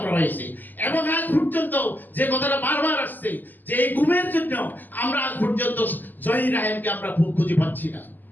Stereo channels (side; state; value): right; late; 0.086 ms